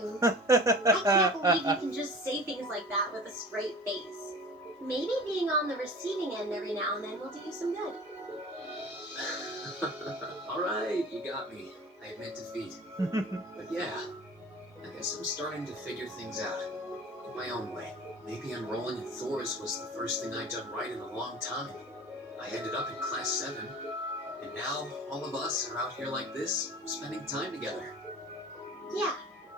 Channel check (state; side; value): normal; both; correlation 0.40